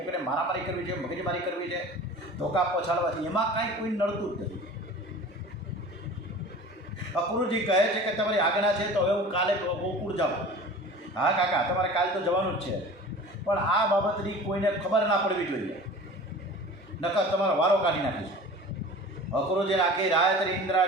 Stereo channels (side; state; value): both; normal; correlation 0.40